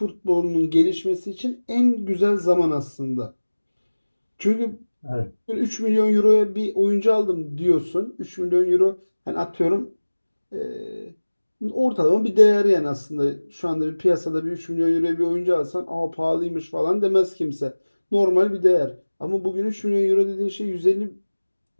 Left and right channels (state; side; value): inverted; both; correlation -1.00